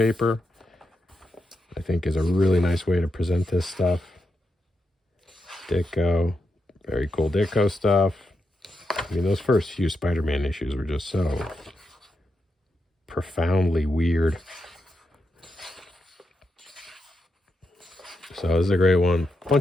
I think is a really nice way to present this stuff. Ditko, very cool Ditko stuff. I mean, those first few Spider-Man issues were just so profoundly weird. So this is a great one.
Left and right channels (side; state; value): both; normal; correlation 0.85